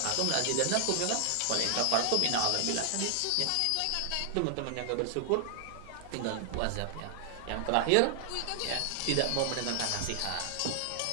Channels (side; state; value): both; different; correlation 0.00